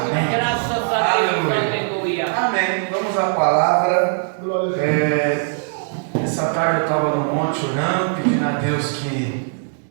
Aleluia. Amém. Vamos à palavra. Essa tarde eu estava no monte orando, pedindo a Deus que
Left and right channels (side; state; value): left; silent; digital silence